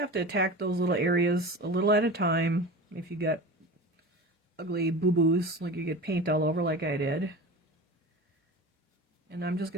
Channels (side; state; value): both; normal; correlation 0.32